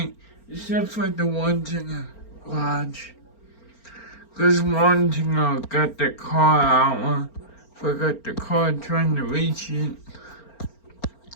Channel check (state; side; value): late; right; 4.4 ms